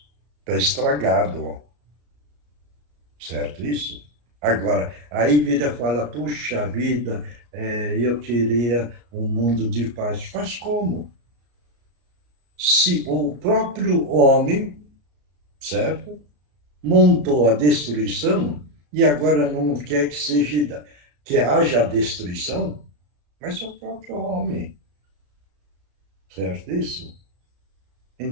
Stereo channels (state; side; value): late; left; 34 ms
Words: Está estragado, certo isso? Agora, aí vira e fala, puxa vida, eu queria um mundo de paz. Faz como? Se o próprio homem, certo, montou a destruição e agora não quer que haja destruição, mas é o próprio homem, certo isso?